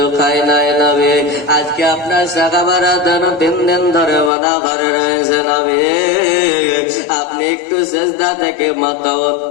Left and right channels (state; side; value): drops out; right; at 4.3 s